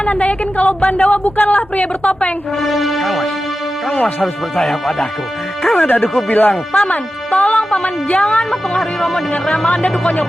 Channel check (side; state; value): both; normal; correlation 0.93